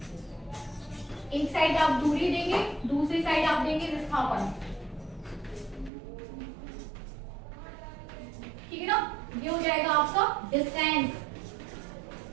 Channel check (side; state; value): left; drops out; at 5.9 s